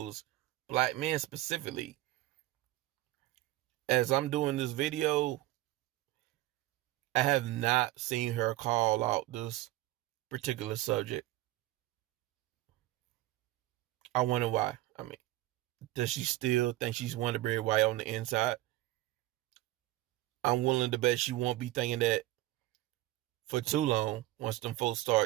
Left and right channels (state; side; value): quieter; left; 16.8 dB